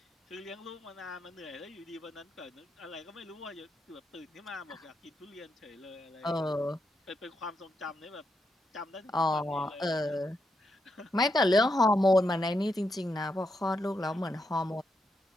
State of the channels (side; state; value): both; normal; correlation 0.83